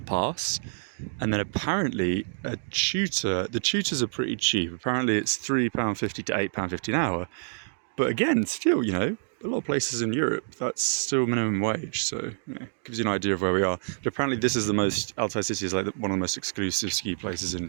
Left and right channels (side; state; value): left; silent; digital silence